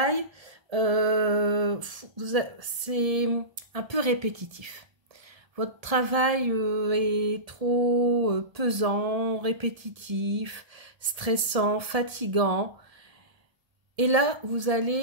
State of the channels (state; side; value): late; left; 1.7 ms